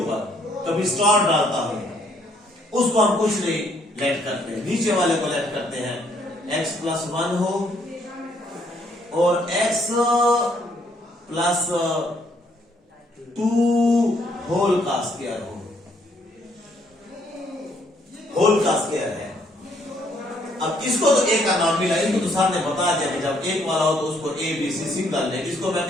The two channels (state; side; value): normal; both; correlation 0.68